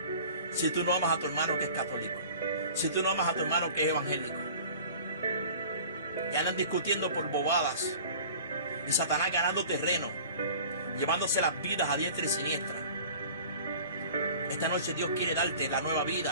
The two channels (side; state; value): both; inverted; correlation -0.44